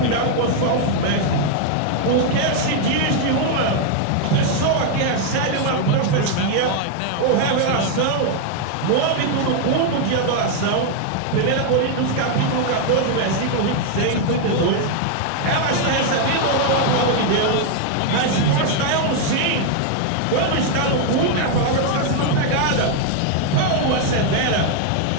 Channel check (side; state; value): both; different; correlation 0.00